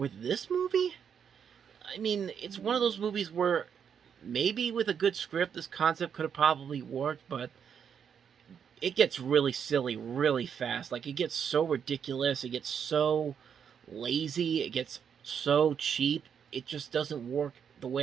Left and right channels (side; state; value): left; quieter; 7.6 dB